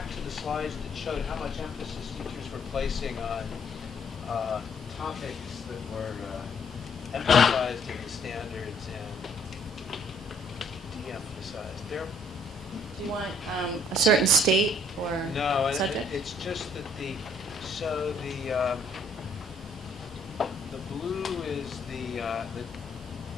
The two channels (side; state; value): both; normal; correlation 0.63